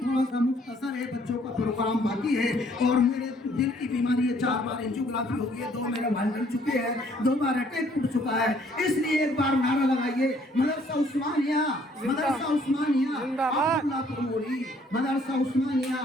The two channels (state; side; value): normal; both; correlation 0.63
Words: थोड़ा सा मुख्तसर है, बच्चों का प्रोग्राम बाकी है और मेरे दिल की बीमारी है। 4 बार एंजियोग्राफी हो गई है, 2 मेरे भाई बन चुके हैं, 2 बार अटैक टूट चुका है। इसलिए एक बार नारा लगाइए, मदरसा उस्मानिया, मदरसा उस्मानिया अब्दुल्लापुर मोड़ी, मदरसा उस्मानिया